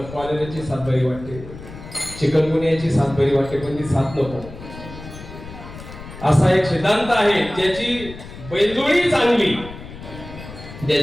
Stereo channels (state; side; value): noise; left; rumble, 14 dB below the sound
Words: कॉलेराची साथ बरी वाटते, चिकनगुनियाची साथ बरी वाटते, पण ती साथ नको. असा एक सिद्धांत आहे. ज्याची बैलजोडी चांगली,